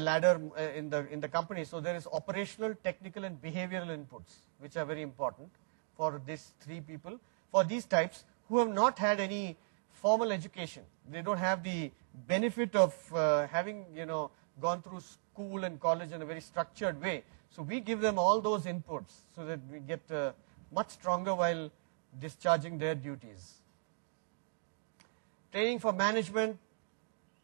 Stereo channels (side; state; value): left; silent; digital silence